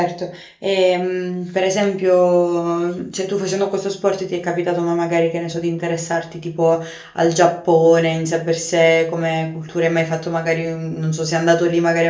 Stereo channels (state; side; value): identical; both; correlation 1.00